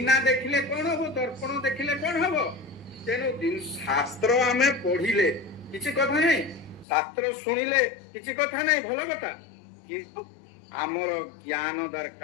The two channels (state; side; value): drops out; right; at 6.9 s